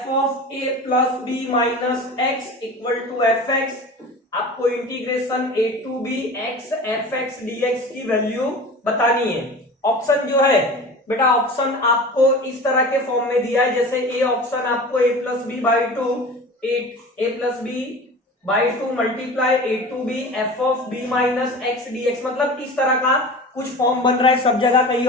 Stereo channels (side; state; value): both; normal; correlation 0.36